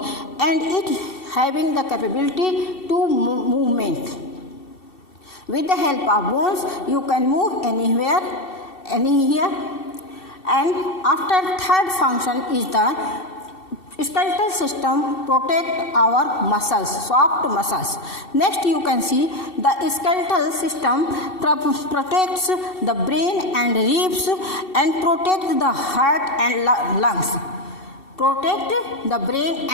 and it having the capability to movement. With the help of bones, you can move anywhere, anywhere. And after third function is the skeletal system protect our muscles, soft muscles. Next, you can see the skeletal system protects the brain and ribs and protects the heart and lungs. Protect the brain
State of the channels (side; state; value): right; late; 2.7 ms